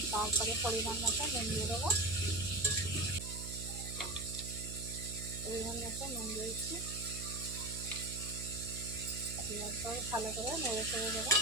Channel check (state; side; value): noise; right; hum, 8 dB below the sound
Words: তারপরে পরিমাণ মতো নুন দিয়ে দেবো, পরিমাণ মতো নুন দিয়ে দিচ্ছি। দেওয়ার পরে ভালো করে নেড়ে চেড়ে দেবো।